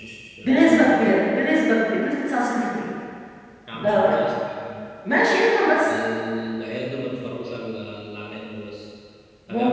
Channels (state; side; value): identical; both; correlation 1.00